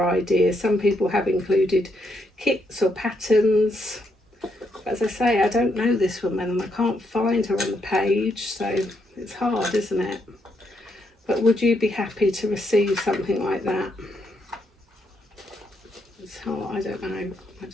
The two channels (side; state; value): both; normal; correlation 0.77